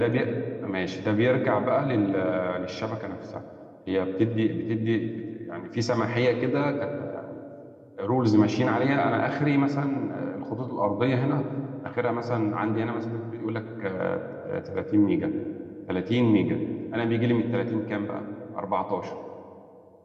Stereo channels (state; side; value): identical; both; correlation 1.00